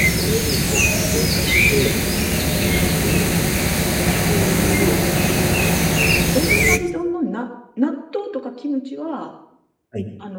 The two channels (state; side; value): identical; both; correlation 1.00